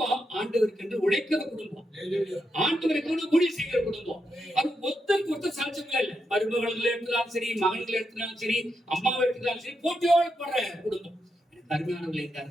ஆண்டவருக்கு என்று உழைக்கிற குடும்பம், ஆண்டவருக்கு ஊழியம் செய்கிற குடும்பம். அது ஒருத்தருக்கு ஒருத்தர் சாட்சியங்களே இல்லை. மருமகளை எடுத்தாலும் சரி, மகன்களை எடுத்தாலும் சரி, அம்மாவை எடுத்தாலும் சரி, போட்டியோடு போடுற குடும்பம். எனக்கு அருமையானவர்களை இந்த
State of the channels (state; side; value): normal; both; correlation 0.84